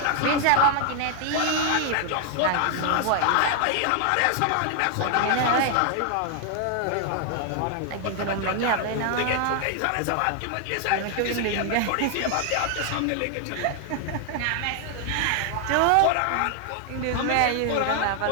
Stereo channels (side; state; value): both; different; correlation 0.00